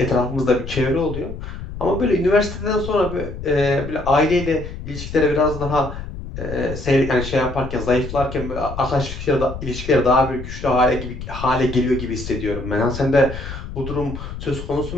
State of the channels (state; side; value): noise; left; rumble, 9 dB below the sound